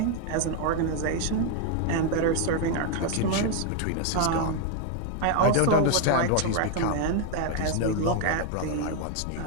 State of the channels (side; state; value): both; different; correlation 0.00